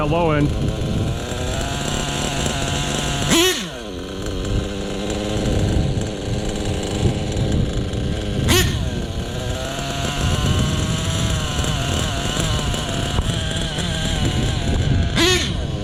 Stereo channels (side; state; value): both; identical; correlation 1.00